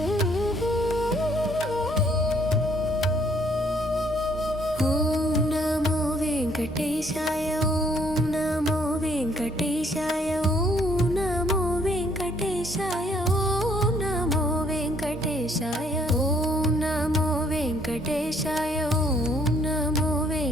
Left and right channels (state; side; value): normal; both; correlation 0.65